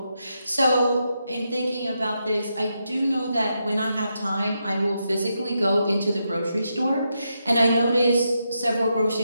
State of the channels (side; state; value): both; inverted; correlation -0.83